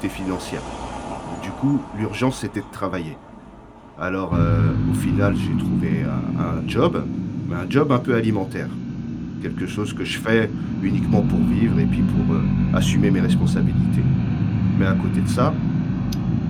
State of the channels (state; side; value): identical; both; correlation 1.00